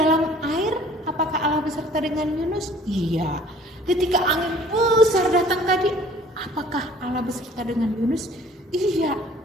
air, apakah Allah beserta dengan Yunus? Iya. Ketika angin besar datang tadi, apakah Allah beserta dengan Yunus? Iya.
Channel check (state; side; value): normal; both; correlation 0.53